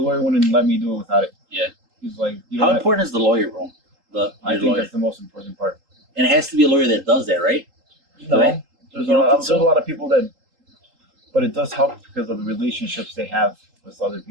lawyer wouldn't let me do it without it. Yeah. He's like, you How don't have, important is the lawyer, bro? I Your think lawyer, that's the most important part. and it has to be a lawyer that does that, right? No, Right? there's You don't think there's a so? lot of people that, but it does help because of the relationships they have with other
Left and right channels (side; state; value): left; late; 3.8 ms